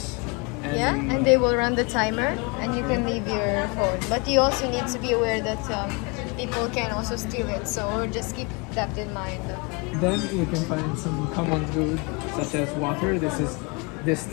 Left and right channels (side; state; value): right; quieter; 30.5 dB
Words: and they will run the timer and you can leave your phone. But you also need to be aware that people can also steal it, so just keep that in mind. Then you can find some common food such as water. This is